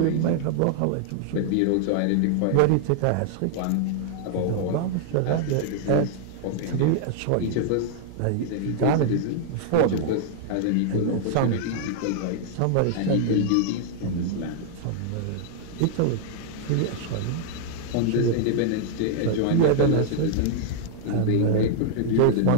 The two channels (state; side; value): different; both; correlation -0.01